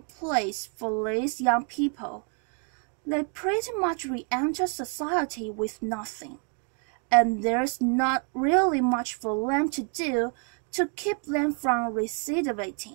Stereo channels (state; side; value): quieter; left; 39.5 dB